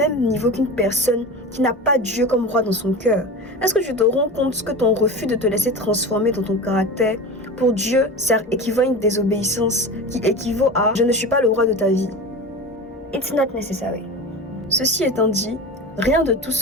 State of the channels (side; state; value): both; normal; correlation 0.29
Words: niveau qu'une personne qui n'a pas Dieu comme roi dans son cœur? Est-ce que tu te rends compte que ton refus de te laisser transformer dans ton caractère, pour Dieu, ça équivaut à une désobéissance qui équivaut à « je ne suis pas le roi de ta vie ». It's not necessary. Ceci étant dit, rien de tout